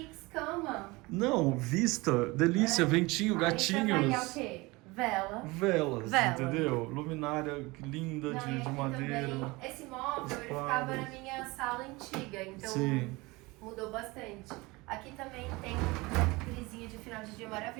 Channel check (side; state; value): left; quieter; 23.3 dB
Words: cama. Não, vista, delícia, ventinho, Aí você vai é o gatinhos. quê? Vela. Velas, Vela. entendeu? Luminária linda Não, e de aqui madeira. também, esse móvel, Os ele ficava quadros. na minha sala antiga, então Sim. mudou bastante. Aqui também tem uma frisinha de final de dia